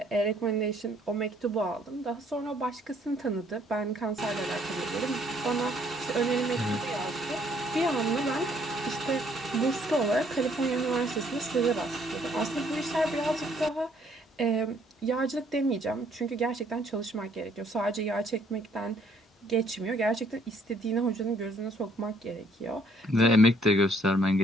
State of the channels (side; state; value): both; normal; correlation 0.65